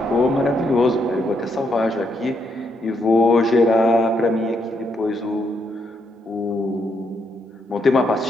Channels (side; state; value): both; normal; correlation 0.77